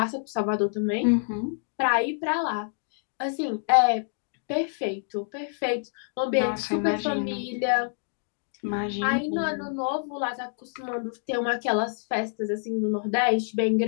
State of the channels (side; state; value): right; silent; digital silence